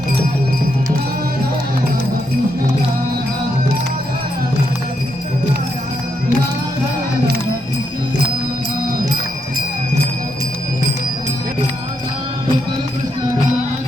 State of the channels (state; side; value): normal; both; correlation 0.80